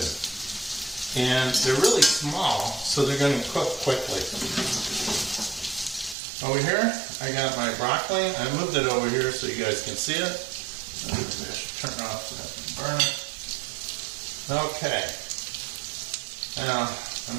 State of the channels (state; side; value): drops out; left; at 6.2 s